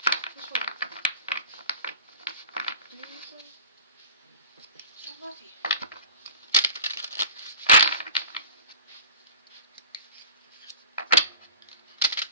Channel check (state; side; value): inverted; both; correlation -0.40